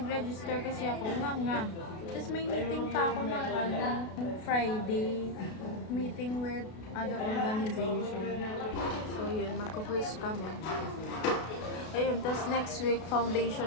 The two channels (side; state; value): right; late; 33 ms